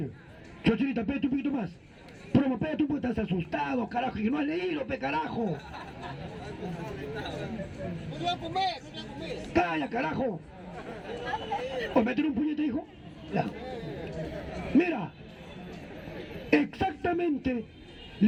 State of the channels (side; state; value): both; identical; correlation 1.00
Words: Chochirita, pégate un poquito más. Promo, pégate un poquito, estás asustado, carajo, que no has leído, pe carajo. Calla, carajo. ¿O meter un puñete, hijo? Ya. Mira, exactamente,